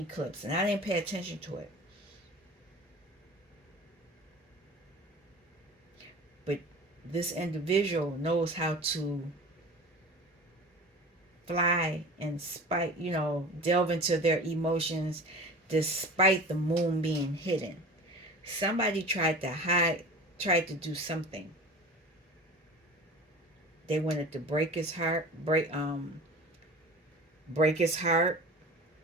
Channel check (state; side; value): normal; both; correlation 0.37